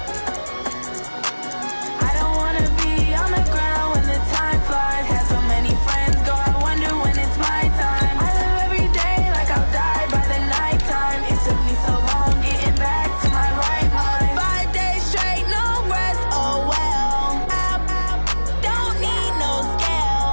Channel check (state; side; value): inverted; both; correlation -1.00